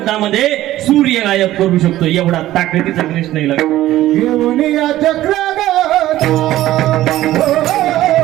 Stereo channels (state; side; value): quieter; left; 14.7 dB